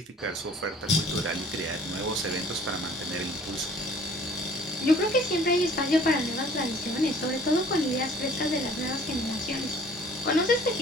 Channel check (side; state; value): both; normal; correlation 0.53